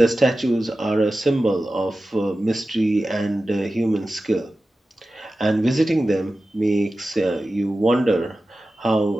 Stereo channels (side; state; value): both; normal; correlation 0.94